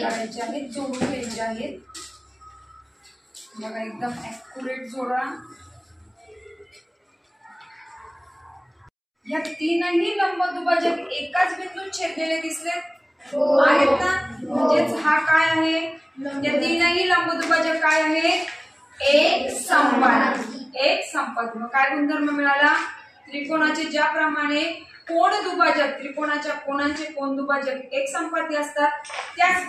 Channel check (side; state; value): both; identical; correlation 1.00